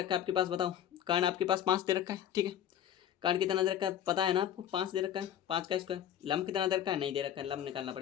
है आपके पास बताओ, कर्ण आपके पास 5 दे रखा है। ठीक है, कर्ण कितना दे रखा है पता है ना आपको, 5 दे रखा है, 5 का स्क्वायर। लंब कितना दे रखा है, नहीं दे रखा है, लंब निकालना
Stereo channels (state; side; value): quieter; right; 10.4 dB